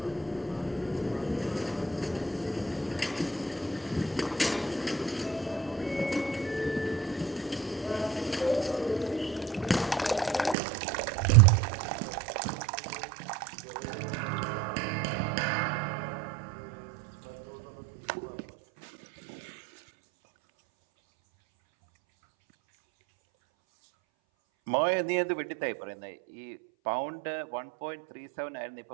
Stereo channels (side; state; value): left; drops out; at 10.6 s